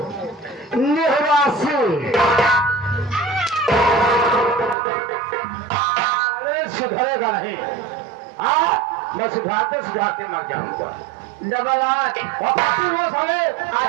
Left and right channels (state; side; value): drops out; left; at 4.8 s